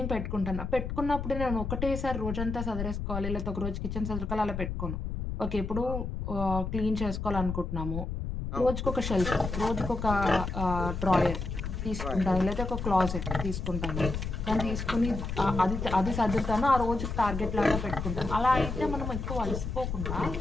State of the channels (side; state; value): left; noise; rumble, 4 dB below the sound